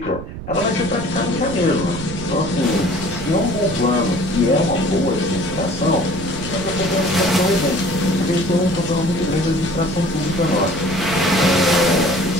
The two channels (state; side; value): noise; right; rumble, 10 dB below the sound